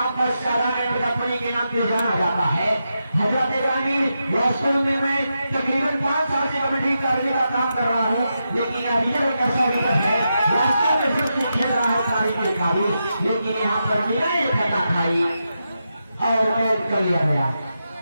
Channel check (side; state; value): both; inverted; correlation -0.87